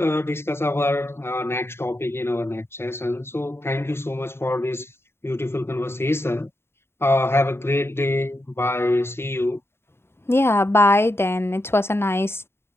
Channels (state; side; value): late; right; 0.12 ms